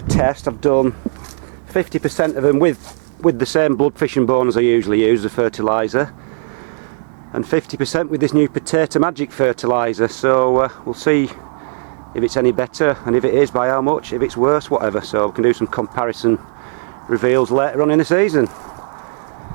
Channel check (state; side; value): silent; left; digital silence